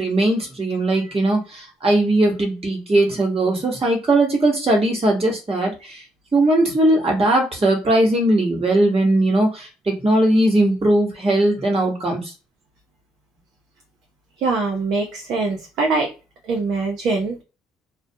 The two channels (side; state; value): both; normal; correlation 0.78